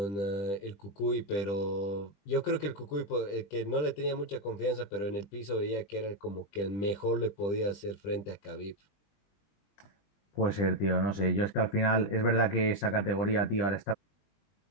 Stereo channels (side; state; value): right; late; 20 ms